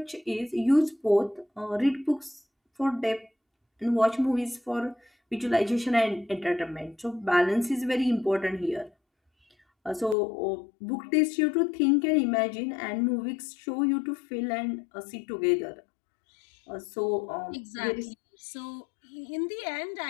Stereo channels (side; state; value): right; drops out; at 10.2 s